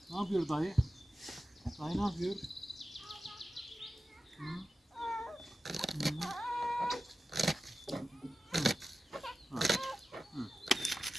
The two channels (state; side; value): normal; both; correlation 0.94